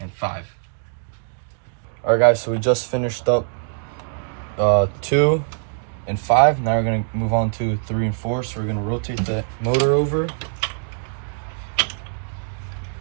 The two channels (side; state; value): left; silent; digital silence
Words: 5. All right, guys, so we just finished up 2 and 5. Now we're gonna move on to 3 and 4. So we're gonna rotate the motor over